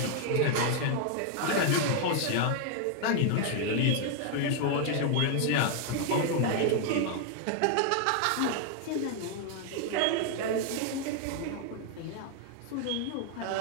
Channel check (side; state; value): both; different; correlation 0.00